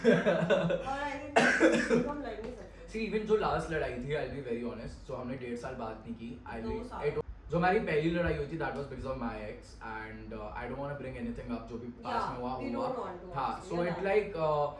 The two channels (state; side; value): identical; both; correlation 1.00